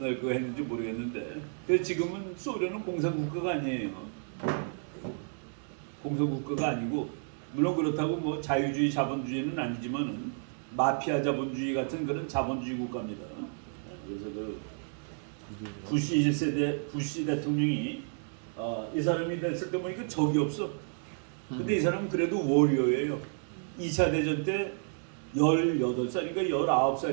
날 그거 했는지 모르겠는데. 그래서 지금은 소련은 공산국가가 아니에요. 공산국가가 아니고 물론 그렇다고 뭐 자유주의 자본주의는 아니지만은 마피아 자본주의 같은 그런 자본주의 국가입니다. 그래서 그 부시 1세대 부시 대통령이 이 사람이 됐을 때 보니까 적이 없어. 근데 이 사람은 그래도 워리어예요. 2차 대전 때 18살인가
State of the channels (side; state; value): left; silent; 57 dB below the other